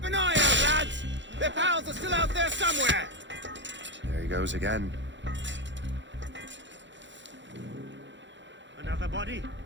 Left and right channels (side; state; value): left; late; 0.54 ms